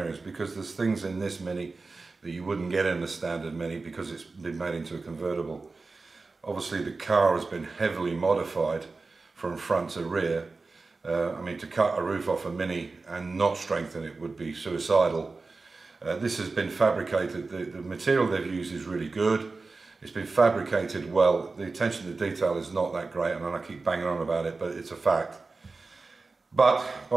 because there's things in this Mini that you wouldn't get in the standard Mini because it's been made into a convertible. Obviously the car has been heavily modified from front to rear. I mean, to cut a roof off a Mini and not strengthen it would be suicidal. This has been fabricated. The material they've used is really good. It's been fabricated well. The attention to detail is not that great, and I keep banging on about it, but it's a fact. But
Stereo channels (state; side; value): quieter; left; 3.9 dB